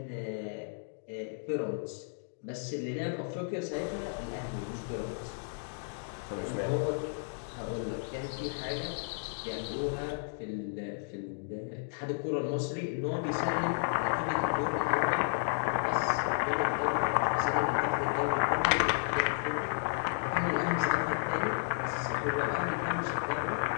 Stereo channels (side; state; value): right; silent; digital silence